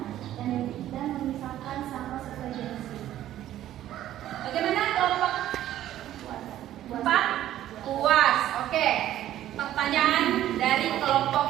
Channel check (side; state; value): left; quieter; 12.8 dB